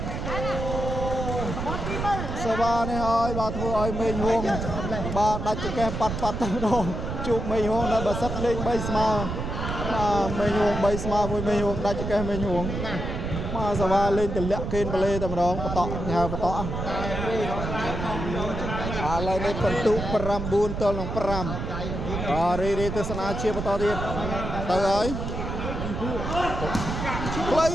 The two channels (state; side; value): noise; right; rumble, 4 dB below the sound